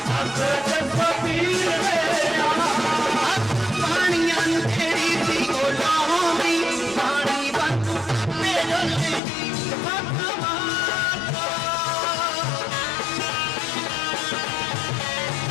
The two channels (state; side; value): drops out; right; at 9.2 s